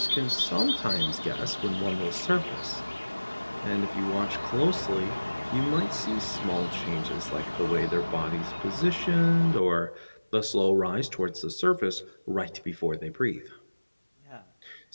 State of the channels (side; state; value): both; inverted; correlation -1.00